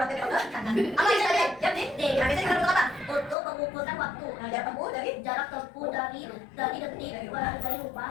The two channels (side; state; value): right; drops out; at 3.4 s